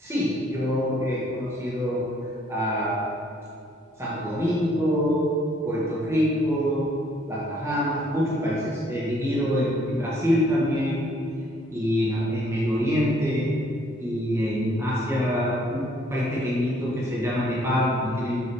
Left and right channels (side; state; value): both; normal; correlation 0.63